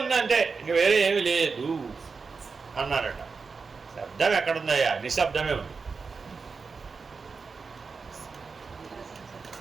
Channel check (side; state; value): left; quieter; 4.8 dB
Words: ఇంక వేరే ఏమి లేదు అన్నారట. శబ్దం ఎక్కడుందయ్యా? నిశ్శబ్దమే ఉంది.